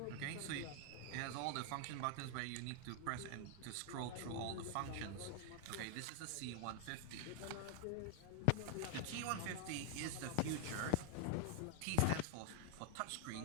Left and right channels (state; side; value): different; both; correlation 0.00